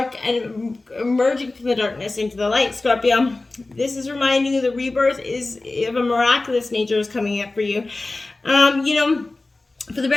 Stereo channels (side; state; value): right; quieter; 3.2 dB